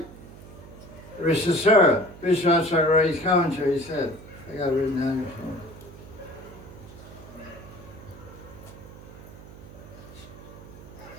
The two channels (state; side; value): noise; right; hum, 17 dB below the sound